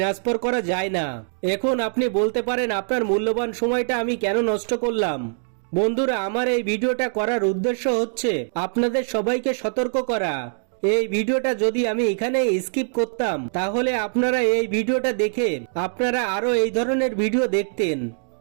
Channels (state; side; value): silent; left; 63 dB below the other